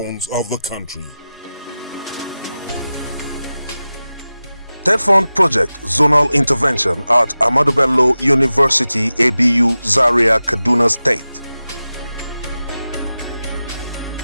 of the country. TED Fund Project Zonal Intervention at Ahmadu Bello University, ABU, Zaria, Kaduna State.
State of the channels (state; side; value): inverted; both; correlation -0.95